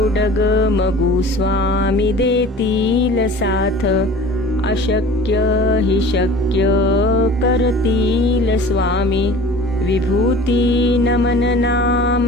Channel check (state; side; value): normal; both; correlation 0.42